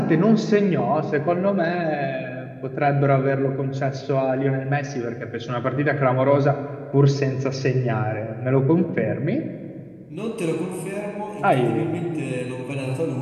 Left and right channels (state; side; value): identical; both; correlation 1.00